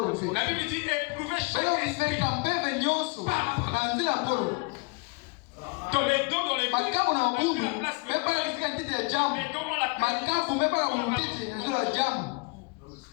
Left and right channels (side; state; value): right; quieter; 29.0 dB